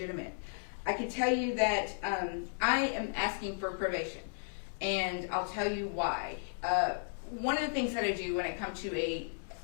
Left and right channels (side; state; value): right; silent; digital silence